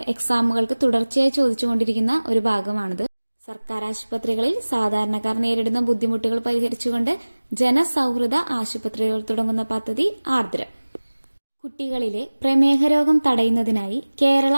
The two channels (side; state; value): both; inverted; correlation -1.00